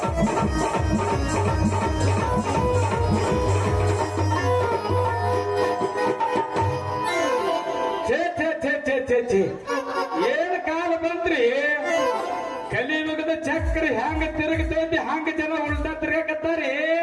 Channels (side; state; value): both; identical; correlation 1.00